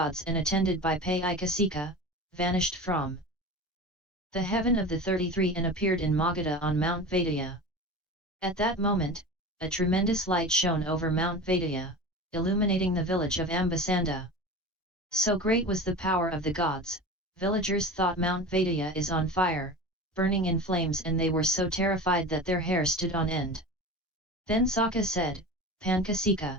and attended by Paiicasikha, vanished from the heaven of the 33 and appeared in Magadha on Mount Vediya. At that moment, a tremendous light shone over Mount Vediya, illuminating the village of Ambasanda. So great was the power of the gods, villagers thought Mount Vediya is on fire, burning in flames, and they were so terrified that their hair stood on end. Then Sakka said,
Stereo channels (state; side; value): normal; both; correlation 0.32